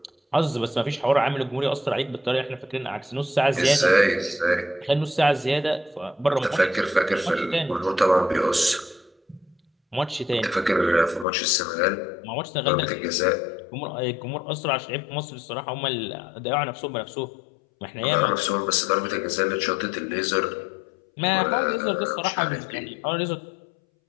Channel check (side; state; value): right; drops out; at 11.2 s